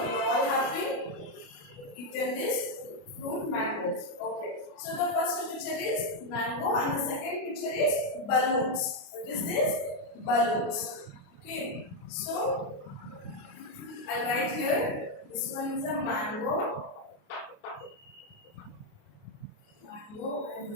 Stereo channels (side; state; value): right; late; 29 ms